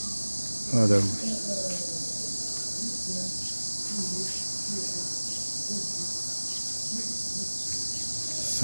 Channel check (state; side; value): inverted; both; correlation -1.00